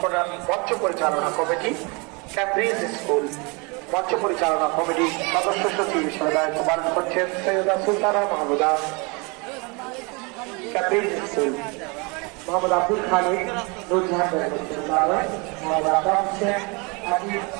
মঞ্চ পরিচালনা কমিটি, ক্যামব্রিজ স্কুল মঞ্চ পরিচালনা কমিটি সদস্য সচিব হিসেবে দায়িত্ব পালন করছেন সৈয়দা সুলতানা মাহমুদা। ক্যামব্রিজ স্কুল মোহাম্মদ আব্দুল খালিক, নুরজাহান মোহাম্মদ আকাশ হোসেন, হাবিব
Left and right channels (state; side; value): quieter; left; 29.8 dB